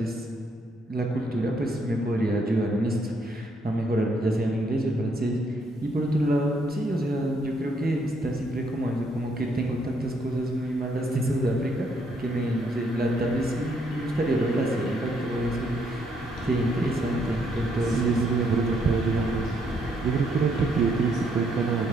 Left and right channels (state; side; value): normal; both; correlation 0.72